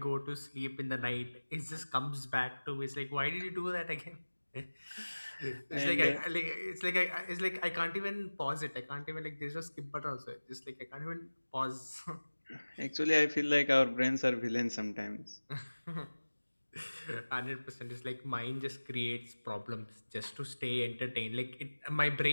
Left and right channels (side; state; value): both; inverted; correlation -1.00